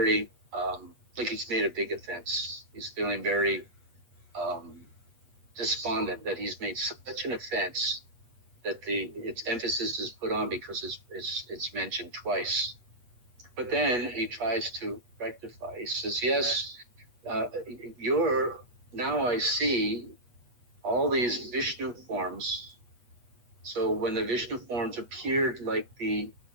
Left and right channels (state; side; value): late; left; 8.3 ms